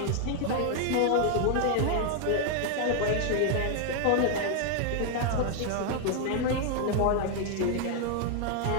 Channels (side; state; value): both; different; correlation 0.00